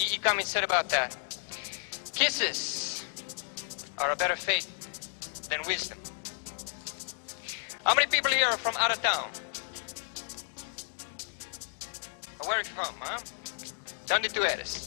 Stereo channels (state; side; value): silent; right; digital silence